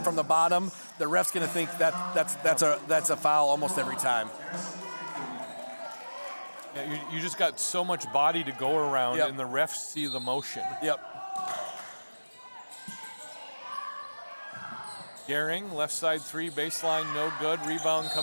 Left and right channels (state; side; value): inverted; both; correlation -1.00